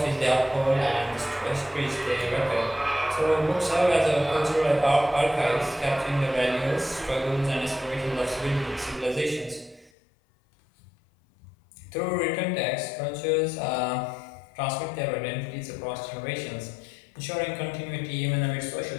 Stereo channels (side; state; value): right; drops out; at 9.9 s